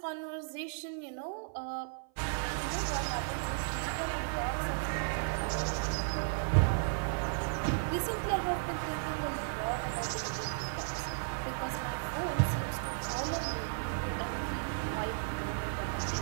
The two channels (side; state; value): left; silent; 55 dB below the other